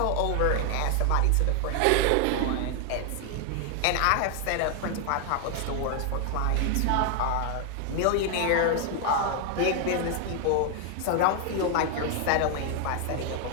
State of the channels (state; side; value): different; both; correlation 0.00